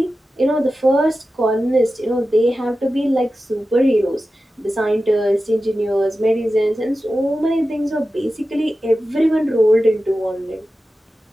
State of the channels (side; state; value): both; normal; correlation 0.93